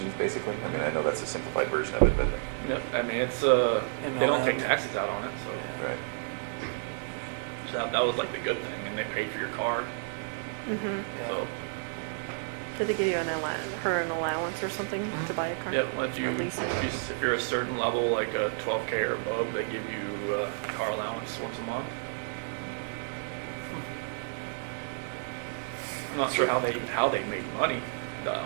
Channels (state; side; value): silent; left; 57 dB below the other